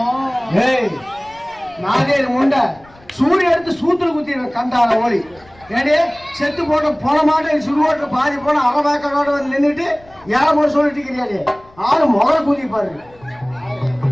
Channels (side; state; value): left; noise; rumble, 27 dB below the sound